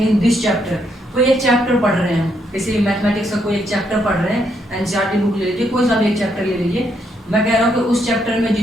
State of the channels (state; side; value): normal; both; correlation 0.75